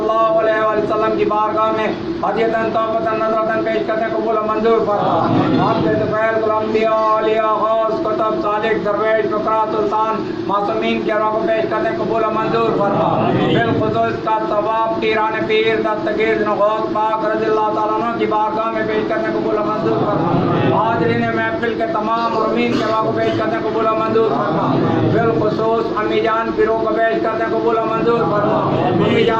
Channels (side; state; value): both; identical; correlation 1.00